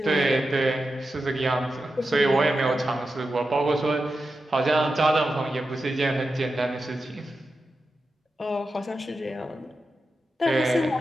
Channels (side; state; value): both; normal; correlation 0.90